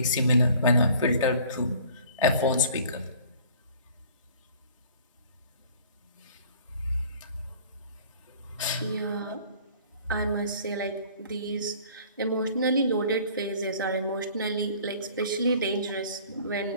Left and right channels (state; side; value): inverted; both; correlation -0.51